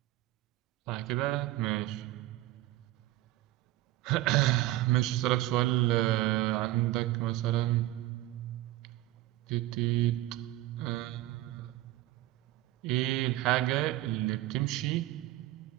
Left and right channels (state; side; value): quieter; left; 16.2 dB